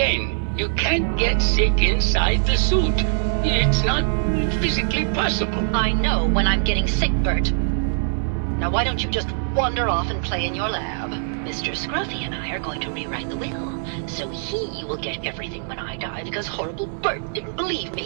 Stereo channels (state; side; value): silent; left; digital silence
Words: you can't get sick inside the suit. It's not physically possible. I know when I'm getting sick, Bert. Now why don't you just wander off and play in your lab? Mr. Scruffy and I are going to rewrite the will, so he will get everything when I die because horrible Bert didn't believe